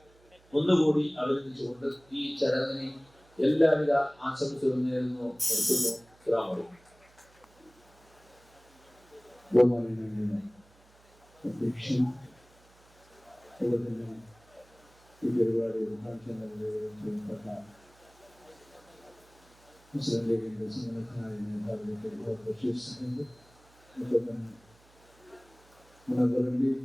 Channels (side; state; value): right; noise; hum, 29 dB below the sound